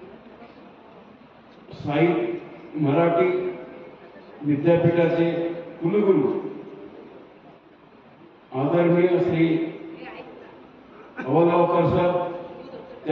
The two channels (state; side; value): identical; both; correlation 1.00